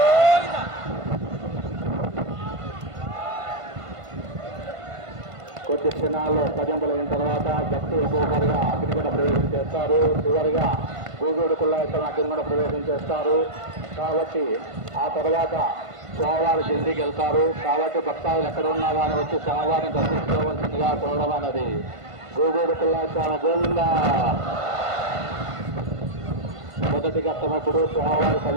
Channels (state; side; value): late; left; 1.5 ms